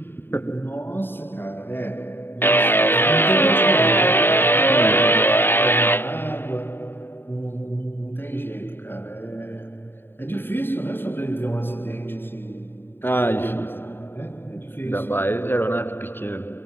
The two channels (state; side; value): late; right; 0.10 ms